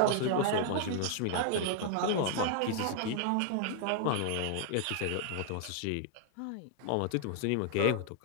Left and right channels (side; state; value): both; different; correlation 0.00